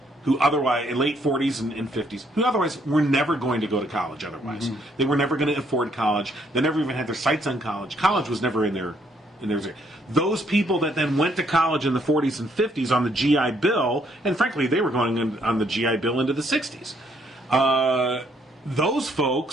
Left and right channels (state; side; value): normal; both; correlation 0.69